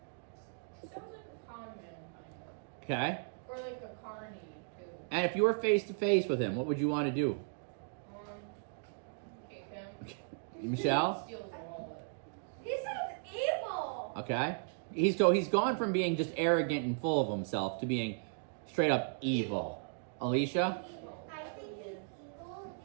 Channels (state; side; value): silent; left; digital silence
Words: Sounds like a con man, kind of. Okay? Or like a carny, too. And if you were face to face with him, what would you want to do? Kick him. Michelle? Steals the wallet. He sounds evil! Okay. He's gone from being just arrogant and full of himself to being straight up evil. Alicia? I think he's evil